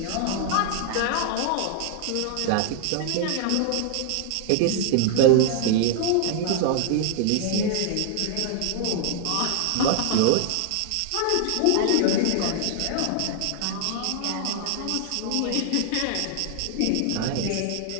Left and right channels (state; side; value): different; both; correlation 0.00